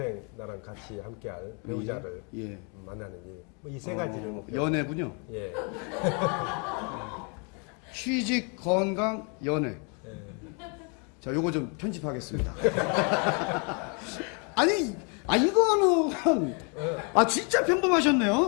나랑 같이 함께할 배우자를 예. 만나는 일. 이 세 가지를 목표로. 연애군요. 예. 취직, 건강, 연애. 예. 자, 요거 좀 편집하겠습니다. 아니, 이거는, 진짜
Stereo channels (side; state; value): right; quieter; 35.8 dB